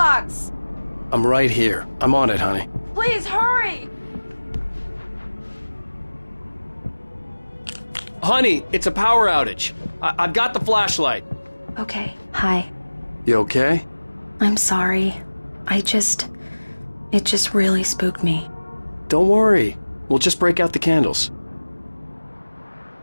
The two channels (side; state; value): both; inverted; correlation -1.00